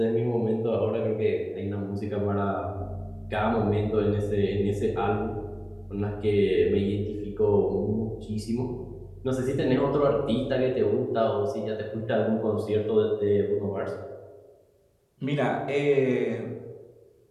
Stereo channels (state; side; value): identical; both; correlation 1.00